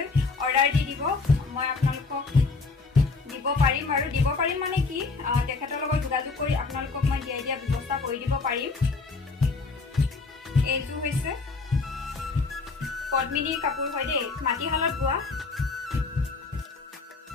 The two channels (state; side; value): quieter; right; 4.0 dB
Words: অৰ্ডাৰ দি দিব মই আপোনালোকক দিব পাৰিম আৰু দিব পাৰিম মানে কি তেখেতৰ লগত যোগাযোগ কৰি আপোনালোকক মই দিয়া ব্যৱস্থা কৰি দিব পাৰিম এইটো হৈছে পদ্মিনীৰ কাপোৰ হয় দেই মাটিশালত বোৱা